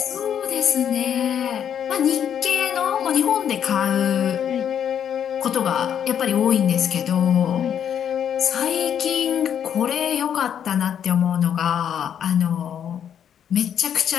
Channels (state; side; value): quieter; right; 8.9 dB